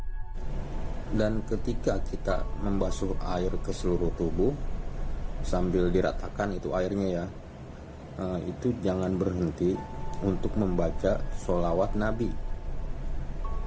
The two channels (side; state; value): both; identical; correlation 1.00